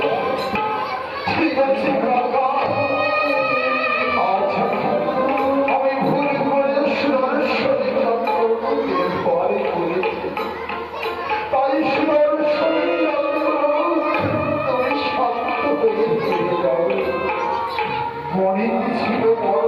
ঠিক আছে কাকা, আচ্ছা আমি ভুল করে সুরেশ্বরী চন্দ্রকে পরে করেছি, তাই সুরেশ্বরী চন্দ্র তুমি শান্ত হয়ে ফিরে যাও। মনে ছিল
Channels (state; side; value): identical; both; correlation 1.00